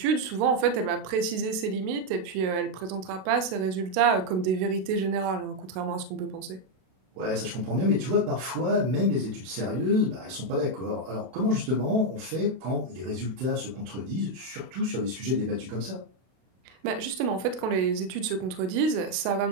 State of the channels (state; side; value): late; left; 32 ms